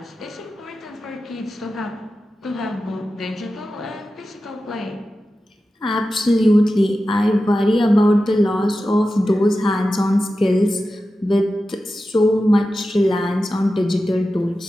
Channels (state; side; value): normal; both; correlation 0.93